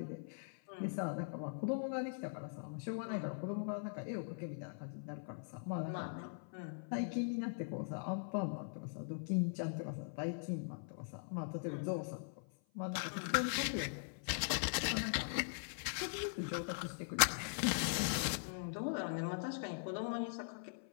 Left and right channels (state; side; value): silent; right; 50 dB below the other